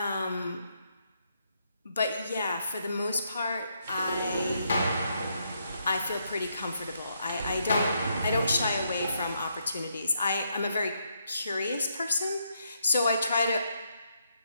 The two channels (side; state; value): both; inverted; correlation -0.77